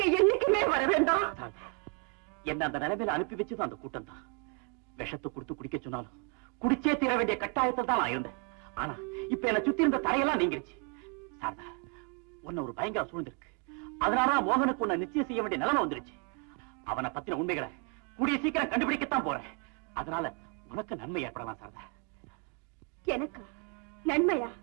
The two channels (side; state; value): left; quieter; 33.5 dB